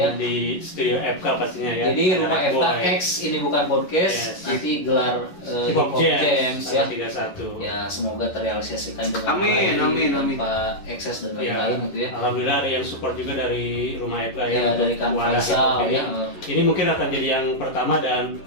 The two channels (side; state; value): right; late; 11 ms